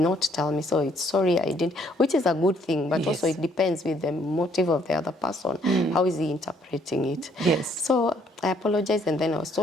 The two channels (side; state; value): both; normal; correlation 0.66